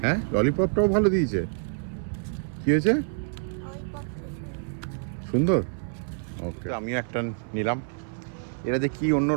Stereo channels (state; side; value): silent; left; 60 dB below the other